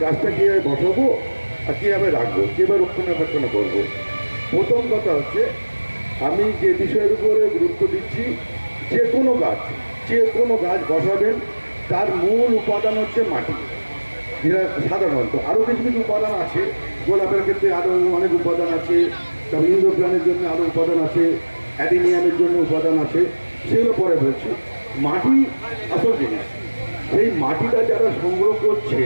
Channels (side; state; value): both; inverted; correlation -1.00